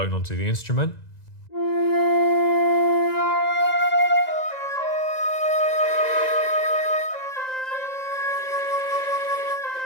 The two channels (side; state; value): right; late; 1.9 ms